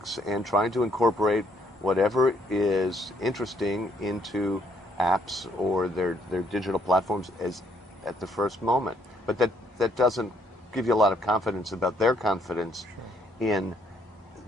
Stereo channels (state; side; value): normal; both; correlation 0.68